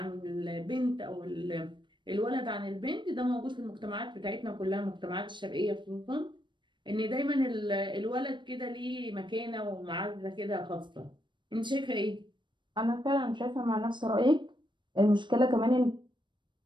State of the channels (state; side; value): late; left; 0.23 ms